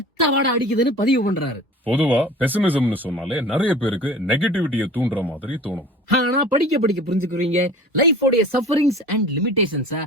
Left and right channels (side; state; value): both; normal; correlation 0.42